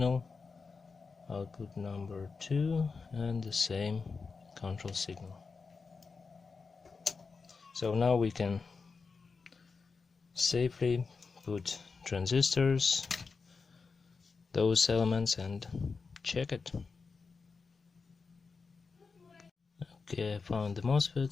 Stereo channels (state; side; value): quieter; right; 4.7 dB